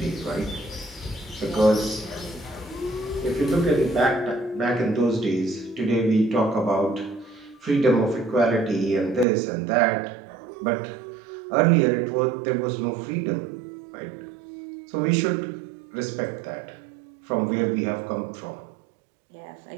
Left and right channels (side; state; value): left; drops out; at 9.2 s